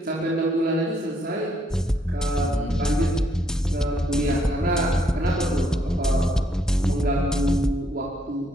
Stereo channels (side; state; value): both; normal; correlation 0.72